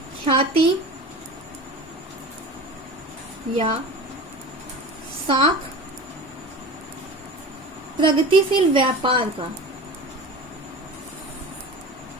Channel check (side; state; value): both; normal; correlation 0.34